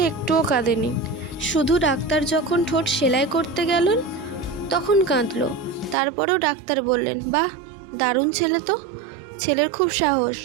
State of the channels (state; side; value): drops out; left; at 6.0 s